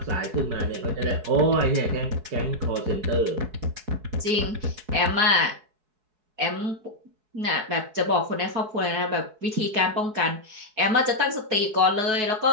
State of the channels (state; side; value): late; left; 4.7 ms